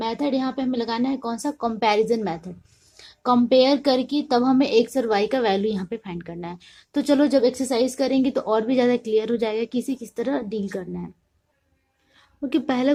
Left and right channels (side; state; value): both; identical; correlation 1.00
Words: यहाँ पे हमें लगाना है कौन सा, कंपैरिजन मेथड। कंपेयर करके तब हमें एक्स और वाई का वैल्यू यहाँ पे फाइंड करना है। तो चलो जब एक्सरसाइज करेंगे तो और भी ज़्यादा क्लियर हो जाएगा कि इसे किस तरह डील करना है। ओके, पहला